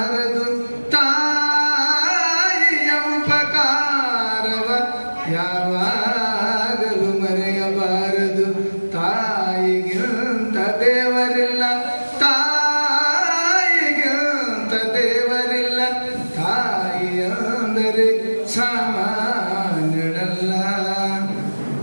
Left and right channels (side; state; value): both; inverted; correlation -1.00